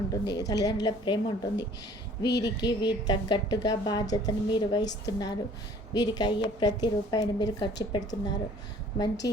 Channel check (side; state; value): both; normal; correlation 0.53